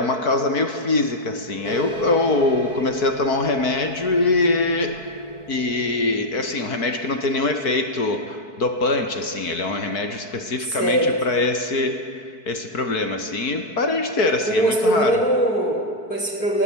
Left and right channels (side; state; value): right; late; 4.6 ms